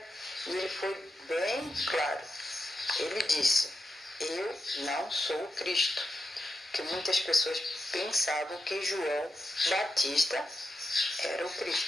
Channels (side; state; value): both; normal; correlation 0.87